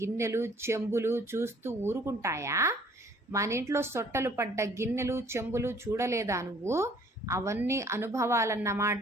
చెంబులు చూస్తూ ఊరుకుంటాయా? మన ఇంట్లో సొట్టలు పడ్డ గిన్నెలు చెంబులు చూడలేదా నువ్వు? అవన్నీ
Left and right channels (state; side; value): normal; both; correlation 0.57